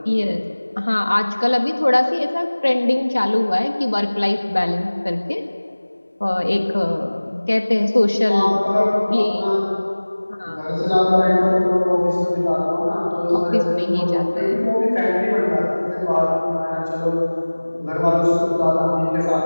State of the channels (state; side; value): inverted; both; correlation -1.00